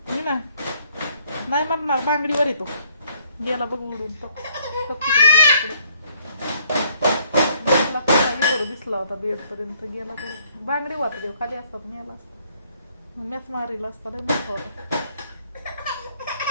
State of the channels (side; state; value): both; inverted; correlation -0.64